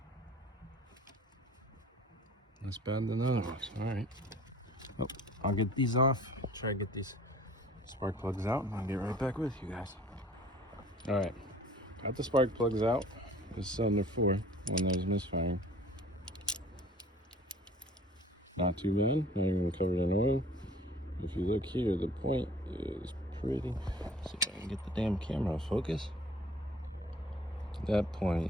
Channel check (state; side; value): normal; both; correlation 0.49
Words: less bad than the other ones. Alright. Well, I'll get these off. Try to get these spark plugs out, and I'll get right back with you guys. Alright. Got the spark plugs out. This is cylinder 4 when there's misfiring. Not too bad. Not even covered in oil. If you look here, the point is pretty. Let's see if I can get the damn camera to focus. That